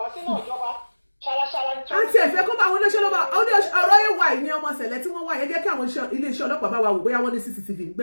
sínú ìjọba ṣaraṣara ní. àti ẹ̀fẹ́ kó bá àwọn olóṣèlú bá ọ̀rọ̀ yẹn wà ní ọmọ ṣẹlẹ̀ tí wọ́n wà yẹn jẹ́ kí àwọn iléeṣẹ́ ọlọ́pàá bá wa wò bóyá wọ́n ní CCTV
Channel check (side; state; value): both; inverted; correlation -1.00